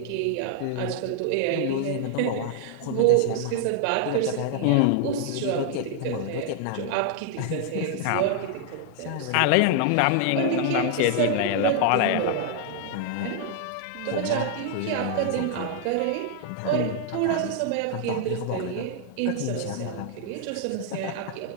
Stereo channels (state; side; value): different; both; correlation 0.00